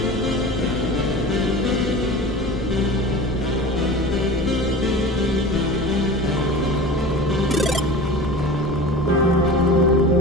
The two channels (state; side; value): normal; both; correlation 0.35